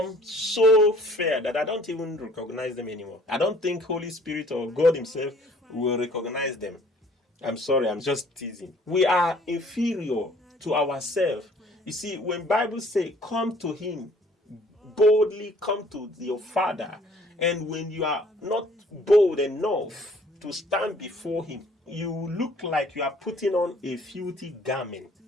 so fair that I don't even recognize them anymore. I don't think Holy Spirit or God himself will recognize them. I'm sorry, I'm just teasing. We are inferior to ourselves. You see, when Bible say, come to him, boldly come to your Father, and when you are not bold enough to stand before him, you look like you are putting on a filthy garment.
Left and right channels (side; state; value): both; normal; correlation 0.57